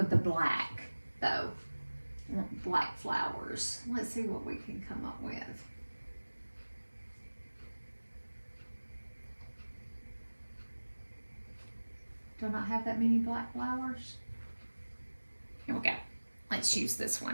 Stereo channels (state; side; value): inverted; both; correlation -1.00